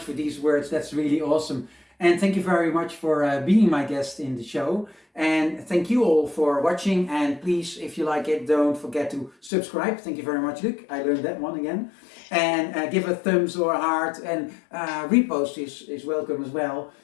for these words. That's really awesome. And thank you very much for being my guest in the show. And thank you all for watching. And please, if you like it, don't forget to subscribe. Thank you very much, Luc. I learned that one again. And give a thumbs or a heart, and repost is welcome as well.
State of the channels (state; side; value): drops out; right; at 9.5 s